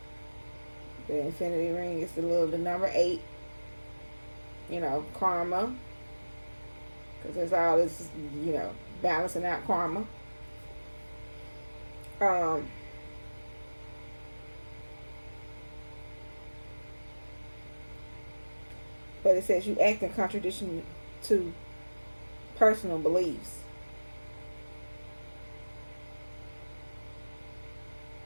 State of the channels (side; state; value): both; inverted; correlation -1.00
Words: the infinity ring is the number 8. Karma, because there's all this, balancing out karma. But it says you act in contradiction to personal beliefs.